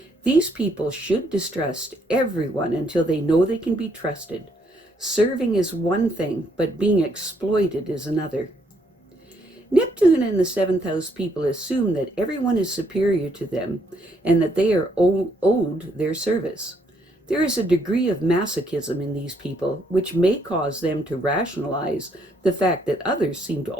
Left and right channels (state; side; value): normal; both; correlation 0.71